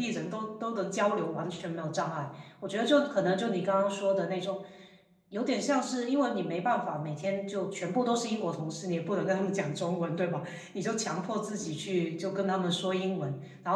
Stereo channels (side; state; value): both; identical; correlation 1.00